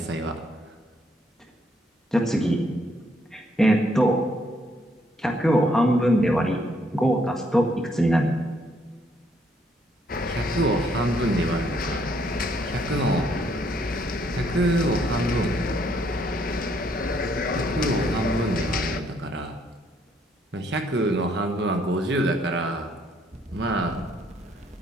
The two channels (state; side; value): normal; both; correlation 0.70